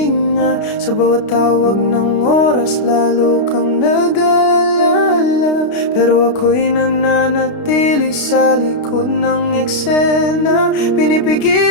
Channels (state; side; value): late; right; 32 ms